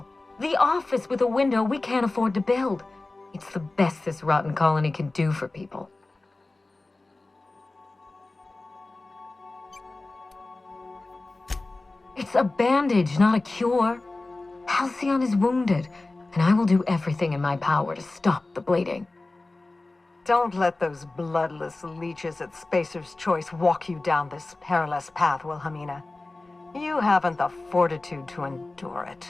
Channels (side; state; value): right; quieter; 3.1 dB